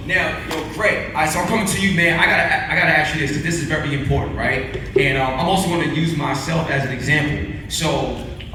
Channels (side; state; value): both; identical; correlation 1.00